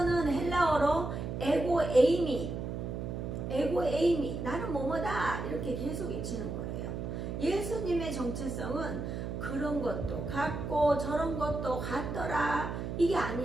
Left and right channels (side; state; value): right; noise; hum, 4 dB below the sound